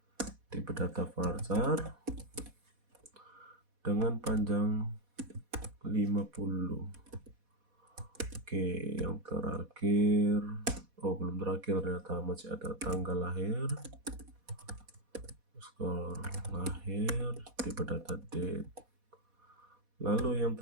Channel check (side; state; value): left; late; 4.1 ms